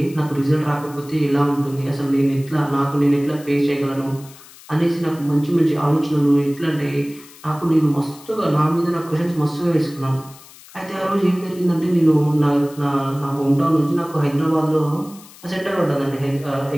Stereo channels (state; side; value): noise; left; hiss, 21 dB below the sound